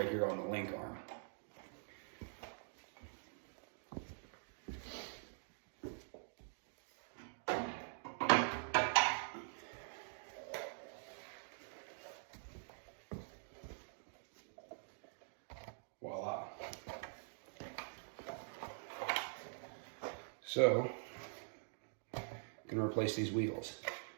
here on the link arm. Voila. So, I'm going to replace these wheels. But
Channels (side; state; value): left; silent; digital silence